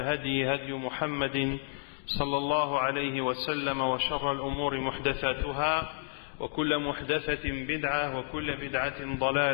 هدي محمد صلى الله عليه وسلم وشر الأمور محدثاتها وكل محدثة بدعة وكل بدعة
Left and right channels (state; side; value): silent; right; digital silence